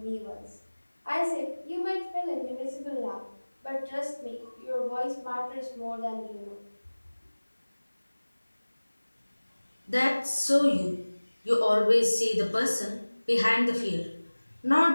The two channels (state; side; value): inverted; both; correlation -1.00